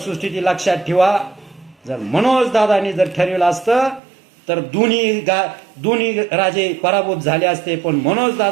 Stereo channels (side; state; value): left; drops out; at 4.0 s